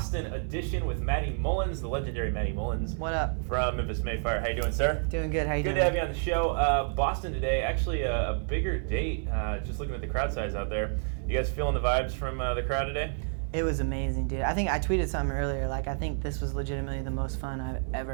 edition with Matty Mullins, the legendary Matty Mullins. What up? From Memphis, Mayfire. How you doing, sir? Doing good. How you Good doing? to have you on the show. Boston today, actually a bigger date. Just looking at the crowd size out there. You guys feeling the vibes from the crowd today? It was amazing, dude. I think I tweeted something earlier. I think this was legitimately the most fun I've ever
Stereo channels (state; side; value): silent; left; 58 dB below the other